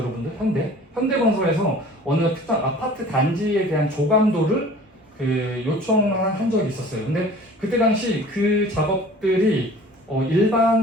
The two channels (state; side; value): normal; both; correlation 0.46